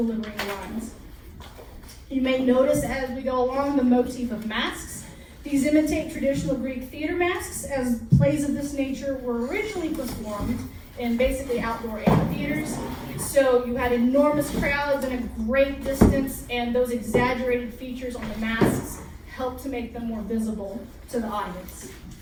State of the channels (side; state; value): both; identical; correlation 1.00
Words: lines. You may notice as we go along the motif of masks. These imitate traditional Greek theater masks, as plays of this nature were originally performed in basically outdoor amphitheaters. So you had enormous crowds and a great distance, and those exaggerated features on the masks helped to make them more visible to the audience.